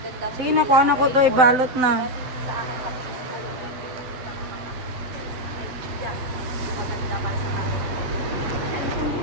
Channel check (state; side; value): late; left; 7.8 ms